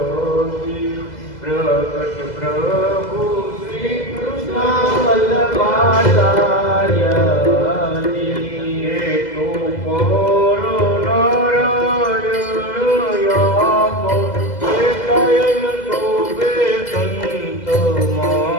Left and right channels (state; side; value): late; right; 2.0 ms